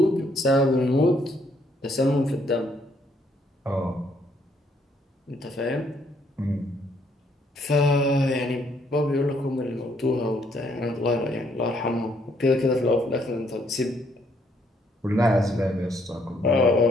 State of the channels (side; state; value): both; normal; correlation 0.69